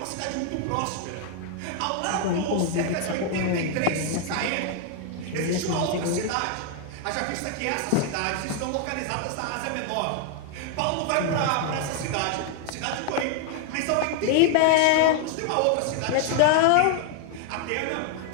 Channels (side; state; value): both; different; correlation 0.00